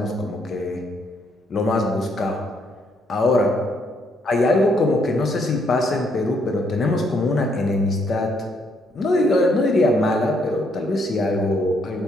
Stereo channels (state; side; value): normal; both; correlation 0.72